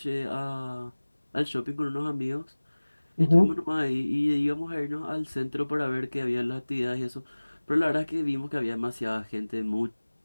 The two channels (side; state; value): both; inverted; correlation -1.00